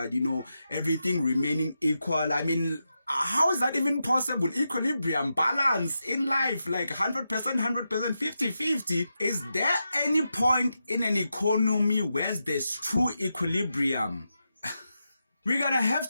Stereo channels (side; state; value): both; inverted; correlation -0.88